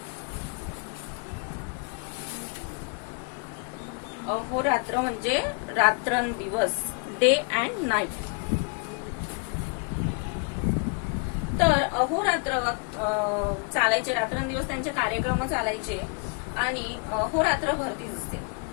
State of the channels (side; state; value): right; quieter; 37.9 dB